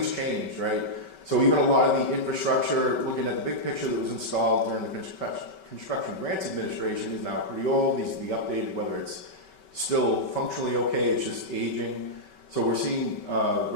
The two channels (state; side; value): late; right; 5.2 ms